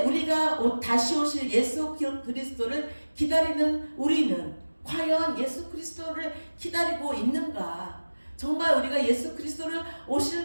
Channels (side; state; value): both; inverted; correlation -1.00